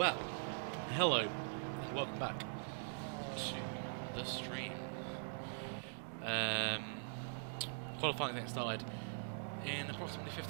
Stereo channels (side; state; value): left; silent; digital silence